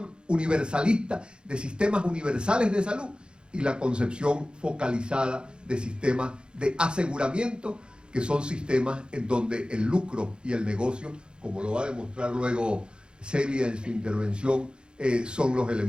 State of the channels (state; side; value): late; left; 0.051 ms